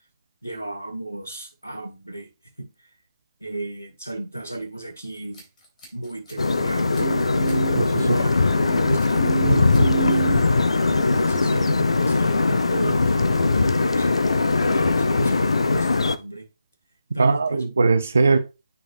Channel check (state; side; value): inverted; both; correlation -0.88